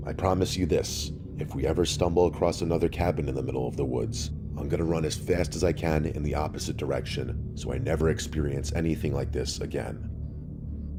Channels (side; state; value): both; identical; correlation 1.00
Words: I promise you this, if we ever stumble across another cabin in the middle of the woods, I'm gonna run as fast as I can in the opposite direction so I never experience anything like this again.